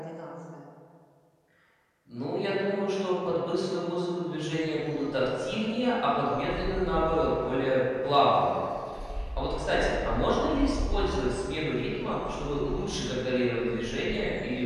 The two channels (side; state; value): both; identical; correlation 1.00